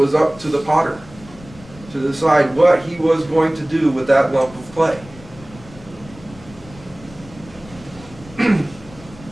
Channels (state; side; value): noise; left; rumble, 20 dB below the sound